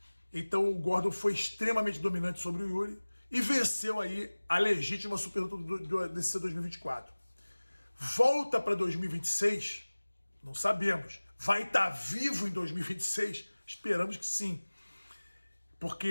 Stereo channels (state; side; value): inverted; both; correlation -1.00